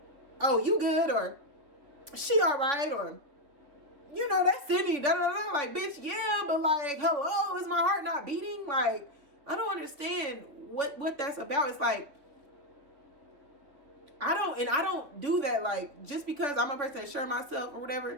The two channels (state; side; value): late; left; 3.5 ms